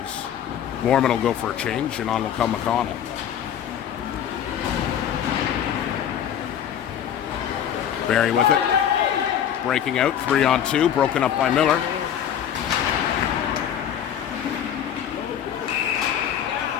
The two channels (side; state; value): right; quieter; 9.4 dB